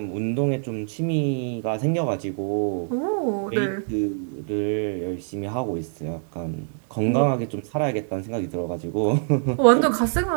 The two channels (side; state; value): left; silent; digital silence